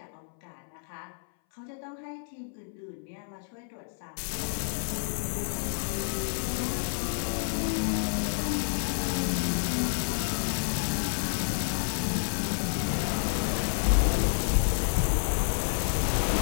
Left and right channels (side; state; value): right; silent; 58 dB below the other